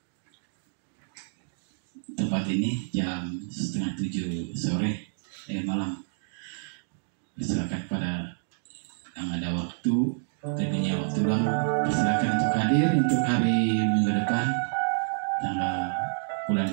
tempat ini jam 6:30 sore malam. Silakan pada yang ada waktu, tadinya waktu luang, silakan untuk hadir untuk hari minggu depan tanggal bulan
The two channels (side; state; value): left; silent; digital silence